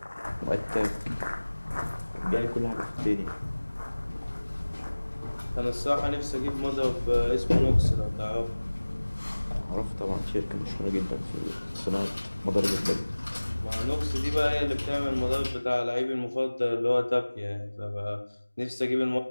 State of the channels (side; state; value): both; inverted; correlation -1.00